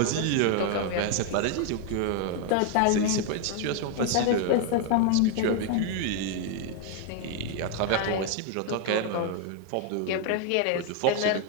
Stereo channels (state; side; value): different; both; correlation 0.00